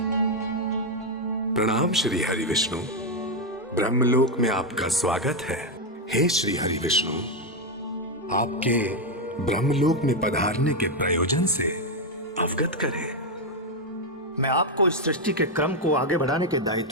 प्रणाम श्री हरि विष्णु। ब्रह्मलोक में आपका स्वागत है। हे श्री हरि विष्णु, आपके ब्रह्मलोक में पधारने के प्रयोजन से अवगत करें। मैं आपको इस सृष्टि के क्रम को आगे बढ़ाने के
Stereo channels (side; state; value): both; normal; correlation 0.04